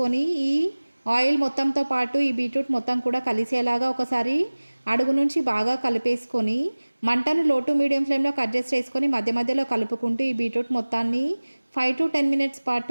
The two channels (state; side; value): inverted; both; correlation -1.00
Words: ఈ ఆయిల్ మొత్తంతో పాటు ఈ బీట్రూట్ మొత్తం కూడా కలిసేలాగా ఒకసారి అడుగు నుంచి బాగా కలిపేసుకొని మంటను లో టు మీడియం ఫ్లేమ్లోకి అడ్జస్ట్ చేసుకొని మధ్య మధ్యలో కలుపుకుంటూ ఈ బీట్రూట్ మొత్తాన్ని 5 to 10 మినిట్స్